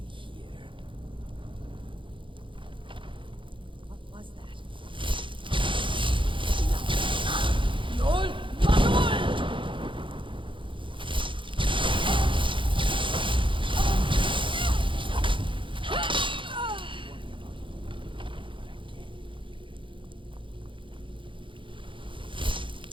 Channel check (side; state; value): left; late; 0.24 ms